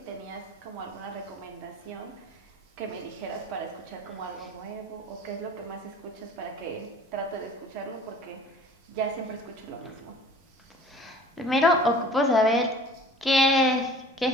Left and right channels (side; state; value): both; normal; correlation 0.46